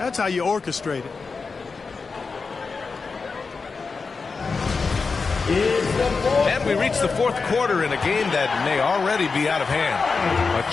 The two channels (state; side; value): quieter; right; 4.6 dB